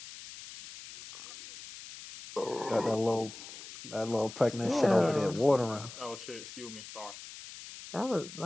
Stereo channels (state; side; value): noise; left; hiss, 14 dB below the sound